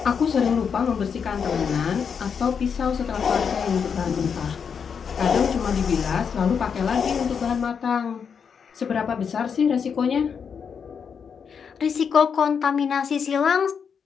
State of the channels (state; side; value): quieter; right; 6.7 dB